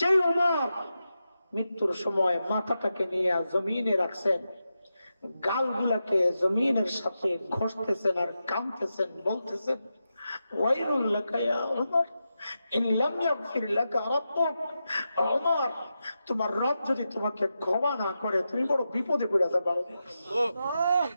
ওমর মৃত্যুর সময় মাথাটাকে নিয়ে জমিনে রাখছেন, গালগুলাকে জমিনের সাথে ঘষতেছেন আর কাঁদতেছেন, বলতেছেন ওয়াইলুল লাকা ইয়া ওমর ইন লাম ইয়াগফির লাকা রাব্বুক। ওমর, তোমার রব যদি তোমাকে ক্ষমা না করে তুমি বড় বিপদে পড়ে যাবে।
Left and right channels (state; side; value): inverted; both; correlation -0.89